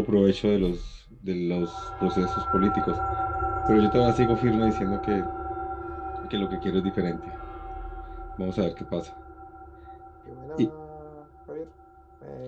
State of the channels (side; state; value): both; identical; correlation 1.00